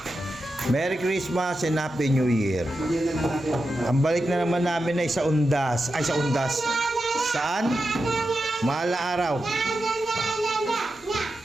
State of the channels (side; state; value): both; normal; correlation 0.89